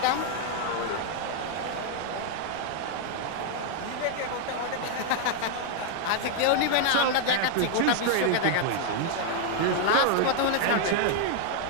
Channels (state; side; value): different; both; correlation 0.00